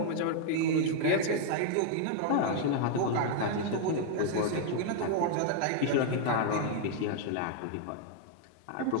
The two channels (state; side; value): different; both; correlation 0.00